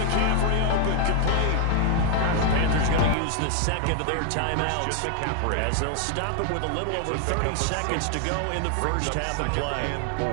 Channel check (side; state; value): both; different; correlation 0.00